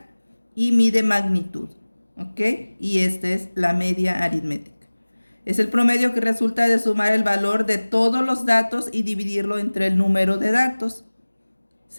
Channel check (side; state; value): both; inverted; correlation -1.00